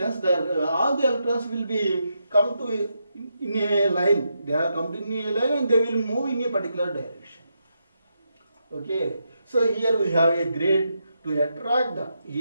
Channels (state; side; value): inverted; both; correlation -0.83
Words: all the electrons will be come to in a line. They are come to in a line and they will move in a particular direction. Okay. So here we have a grid to attract the.